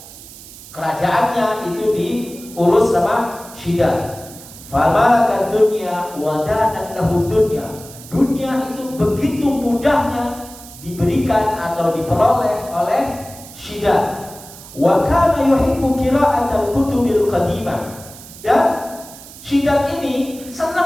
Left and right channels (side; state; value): right; noise; hiss, 17 dB below the sound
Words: Kerajaannya itu diurus sama Shidad. Famalakat dunya wa danat lahu dunya. Dunia itu begitu mudahnya diberikan atau diperoleh oleh Shidad. Wa kana yuhibbu qira'atal kutubil qadimah. Dan Shidad ini